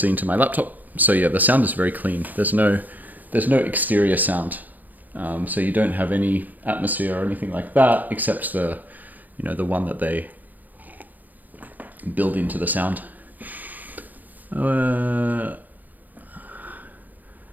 into my laptop. So yeah, the sound is very clean. There's no exterior sound, so you don't have any atmosphere or anything like that, except the one that they build into the sound. I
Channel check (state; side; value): late; left; 0.083 ms